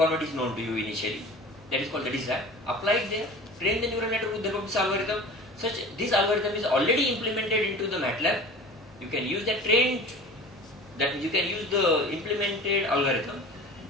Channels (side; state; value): both; normal; correlation 0.39